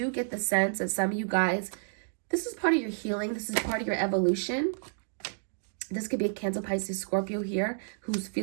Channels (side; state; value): left; silent; digital silence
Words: get the sense that some of you guys, this is part of your healing. This is part of your evolution. This could be a Cancer, Pisces, Scorpio here who's